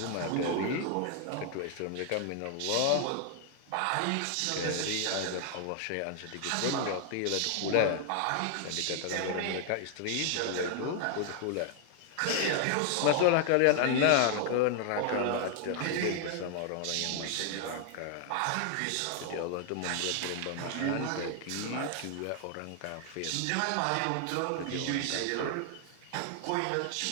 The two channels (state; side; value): different; both; correlation 0.00